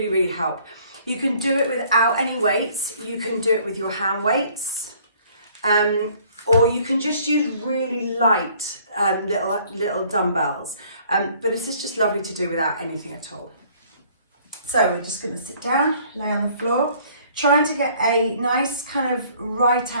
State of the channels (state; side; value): inverted; both; correlation -0.58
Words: help. You can do it without any weights. You can do it with your hand weights. Or you can just use really light little dumbbells. But this is just lovely to do without anything at all. So we're just going to sit down, lay on the floor, trying to get a nice kind of right